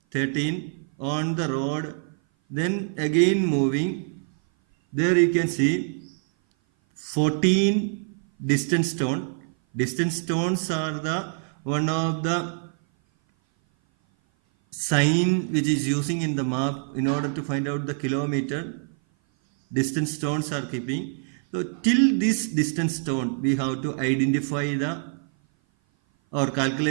13 on the road. Then again moving. There you can see 14 distance stone. Distance stones are the one of the sign which is using in the map in order to find out the kilometer. Distance stones are keeping. So till this distance stone we have to identify the or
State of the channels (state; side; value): silent; left; 57 dB below the other